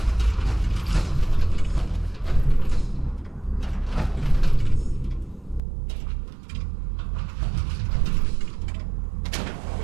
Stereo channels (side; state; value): left; drops out; at 5.6 s